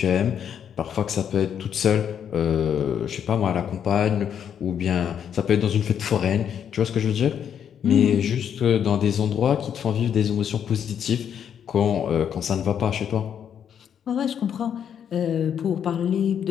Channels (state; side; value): quieter; right; 8.6 dB